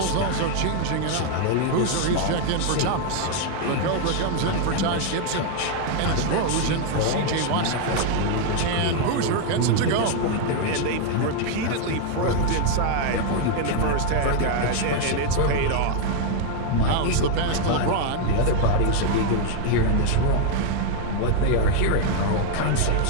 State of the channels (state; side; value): different; both; correlation 0.00